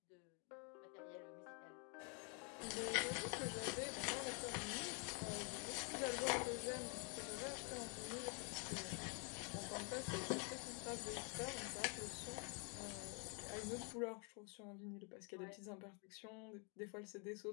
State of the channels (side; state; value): right; quieter; 37.0 dB